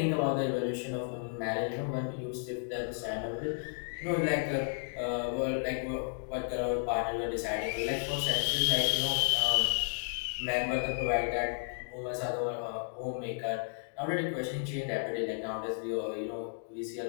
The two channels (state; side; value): silent; right; digital silence